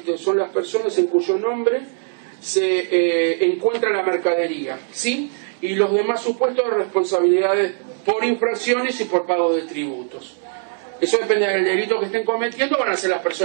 cuyo nombre se encuentra la mercadería, ¿sí? Y los demás supuestos de responsabilidades por infracciones y por pago de tributos. Eso depende del delito que estén cometiendo, van a ser las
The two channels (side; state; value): left; silent; 65 dB below the other